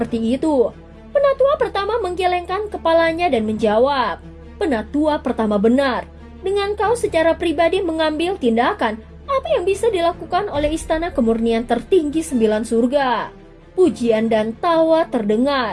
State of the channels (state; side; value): identical; both; correlation 1.00